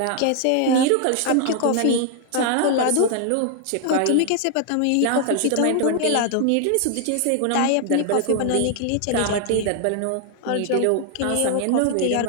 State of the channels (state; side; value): different; both; correlation 0.00